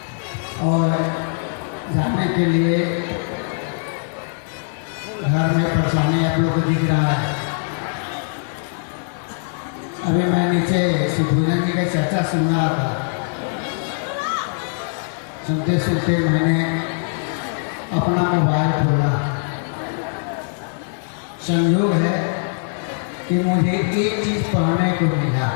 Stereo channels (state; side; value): silent; right; digital silence